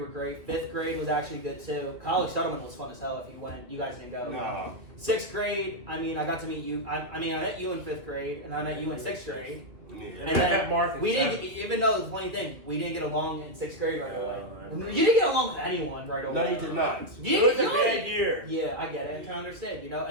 were great. 5th grade was actually good too. College Settlement was fun as hell if you went. You guys didn't go. Nah. 6th grade, I got to meet you. I met you in 5th grade, and I met you in 6th grade. Yeah. And then Mark we didn't, even though the funny thing, we didn't get along in 6th grade right away. You didn't get along with anyone right away. No, you did not. It was a bad year. Yeah, I get it. I'm trying to understand, you know.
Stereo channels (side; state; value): left; late; 2.6 ms